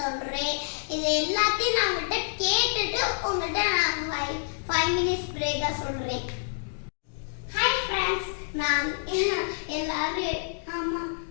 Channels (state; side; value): silent; right; digital silence